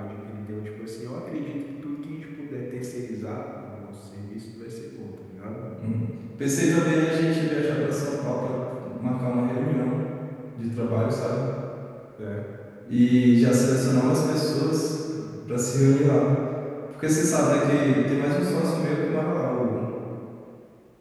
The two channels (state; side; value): identical; both; correlation 1.00